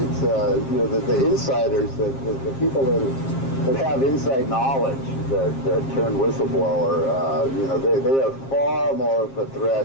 the insiders, the people that have inside knowledge that turn whistleblower, they are far more of a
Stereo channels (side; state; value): right; late; 7.4 ms